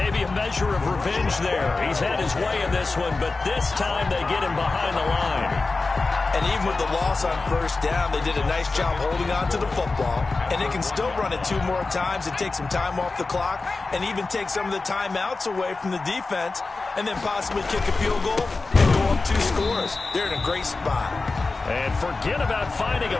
a measure of revenge there. He's had his way in this one, but this time they get him behind the line. And even with the loss on 1st down, they did a nice job holding on to the football. And they can still run it 2 more times and take some time off the clock and even take some of the timeouts away from the defense and then possibly kick a field goal and go up 2 scores. They're in a great spot. And forget about finding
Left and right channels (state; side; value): quieter; right; 3.7 dB